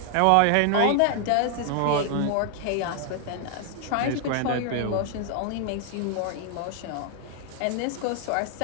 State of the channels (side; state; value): both; different; correlation 0.00